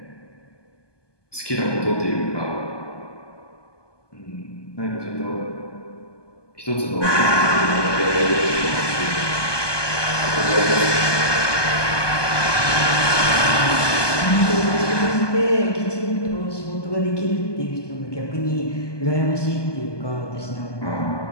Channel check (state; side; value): late; right; 1.2 ms